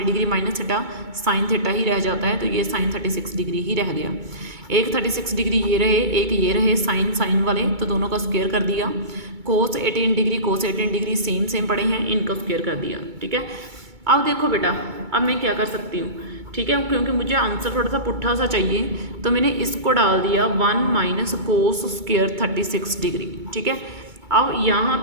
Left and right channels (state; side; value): late; left; 2.2 ms